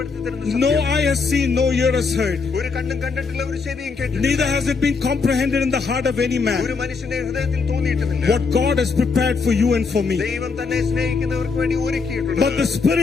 തരുന്നത്. No eye has seen, no ear has heard, ഒരു കണ്ണും കണ്ടിട്ടില്ല, ഒരു ചെവിയും കേട്ടിട്ടില്ല, neither has it been comprehended in the heart of any man ഒരു മനുഷ്യന്റെ ഹൃദയത്തിൽ തോന്നിയിട്ടുമില്ല what God has prepared for you and for me. ദൈവം തന്നെ സ്നേഹിക്കുന്നവർക്ക് വേണ്ടി ഒരുക്കിയിട്ടുണ്ട്. But the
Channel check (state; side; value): quieter; right; 4.8 dB